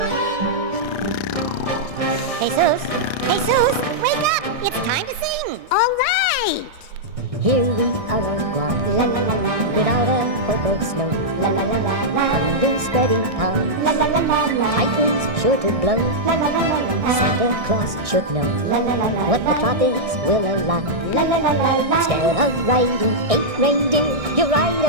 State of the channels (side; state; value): left; late; 1.6 ms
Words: Jesus, wake up! It's time to sing. All right. Here we are on Guam, la la la la, without a hope of snow, la la la la la, under spreading calms, la la la la la, typhoons sure to blow, la la la la la, Santa Claus should know, la la la la, what the tropics will allow, la la la la la. Instead of riding 8 reindeer, you ride